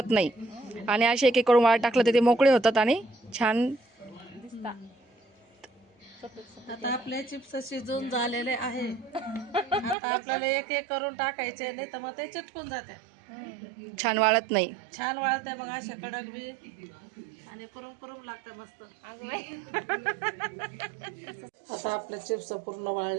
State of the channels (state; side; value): drops out; left; at 10.0 s